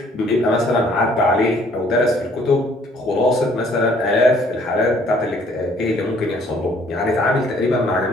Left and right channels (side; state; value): both; normal; correlation 0.60